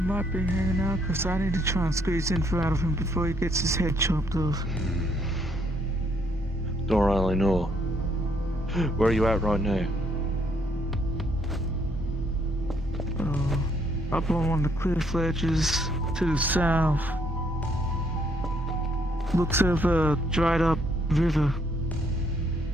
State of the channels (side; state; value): both; normal; correlation 0.69